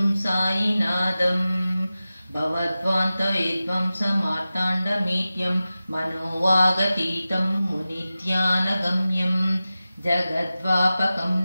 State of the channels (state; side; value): inverted; both; correlation -0.95